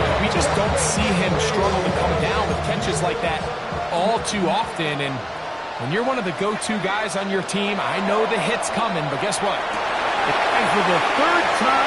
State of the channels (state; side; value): identical; both; correlation 1.00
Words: We just don't see him struggle to come down with catches like that all too often. And when you're one of the go-to guys on your team, I know the hit's coming, but guess what? And for the third